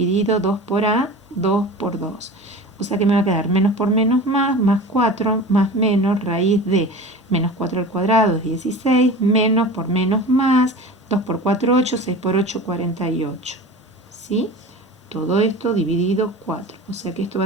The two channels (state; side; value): normal; both; correlation 0.35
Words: 2 por a, 2 por 2. O sea que me va a quedar menos por menos más 4, más menos, raíz de menos 4 al cuadrado es 16, menos por menos más, 2 por 4, 8, 6 por 8, 48. ¿Sí? Todo esto dividido 4. O sea que esto va